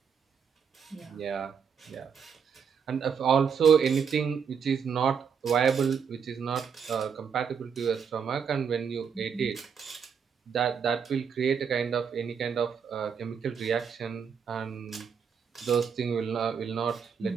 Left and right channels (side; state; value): left; quieter; 6.8 dB